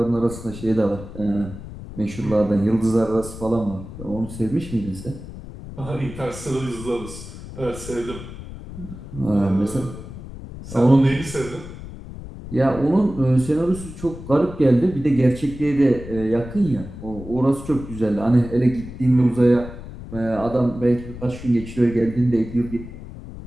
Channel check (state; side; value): noise; left; rumble, 12 dB below the sound